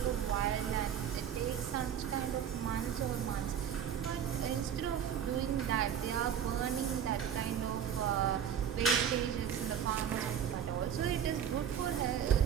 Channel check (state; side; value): quieter; left; 8.7 dB